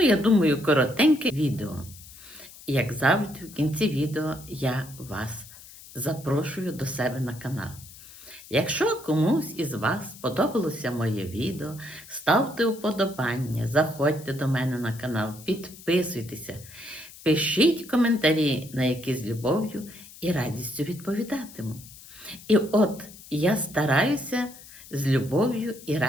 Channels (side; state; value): left; noise; hiss, 19 dB below the sound